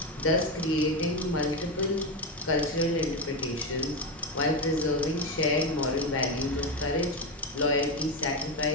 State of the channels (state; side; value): normal; both; correlation 0.13